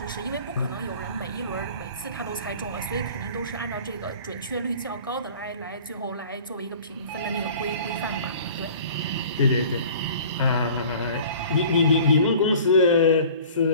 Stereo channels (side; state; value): both; inverted; correlation -0.46